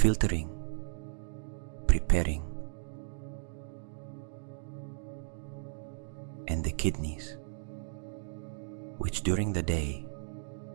preparing, and the kidneys, which during the day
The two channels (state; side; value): silent; left; digital silence